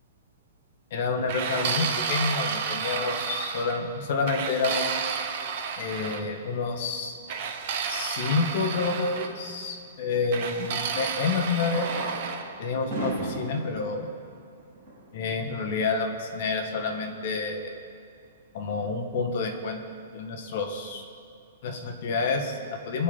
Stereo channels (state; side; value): inverted; both; correlation -0.34